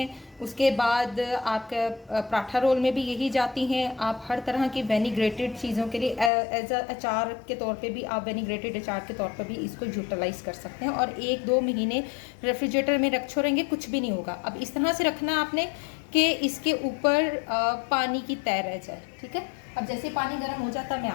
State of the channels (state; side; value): drops out; right; at 6.3 s